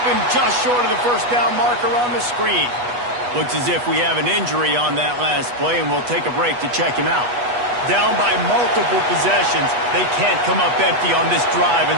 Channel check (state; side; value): late; left; 8.2 ms